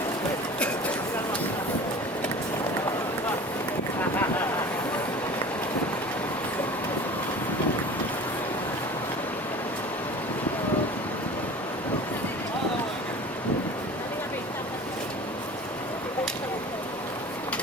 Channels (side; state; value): both; normal; correlation 0.39